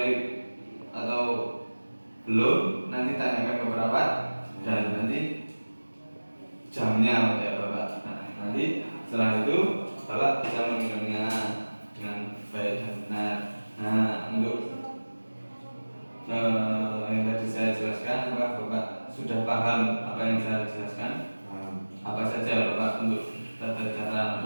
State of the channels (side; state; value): both; inverted; correlation -1.00